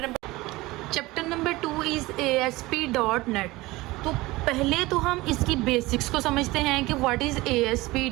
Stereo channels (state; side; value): quieter; left; 20.3 dB